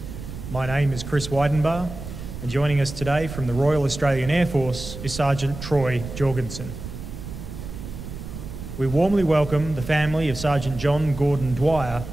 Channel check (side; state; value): right; noise; rumble, 10 dB below the sound